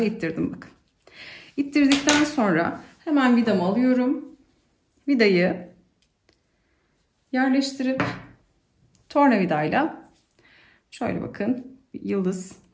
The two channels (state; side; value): identical; both; correlation 1.00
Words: ittirdim bakın. İttirdikten sonra hemen vidamı alıyorum. Vidayı yerleştirip tornavidayla şöyle bakın, bir yıldız